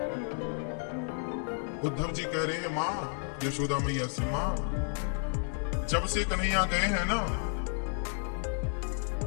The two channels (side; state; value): right; silent; 57 dB below the other